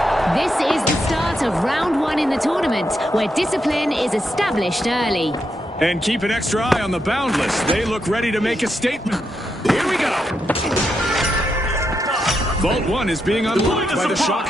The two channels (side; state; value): both; normal; correlation 0.83